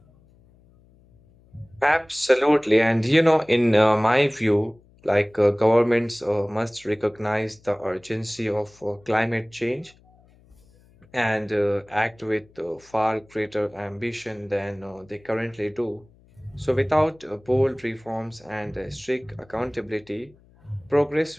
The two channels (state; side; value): noise; left; hum, 29 dB below the sound